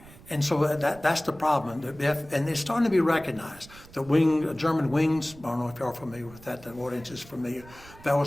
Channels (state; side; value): noise; right; rumble, 21 dB below the sound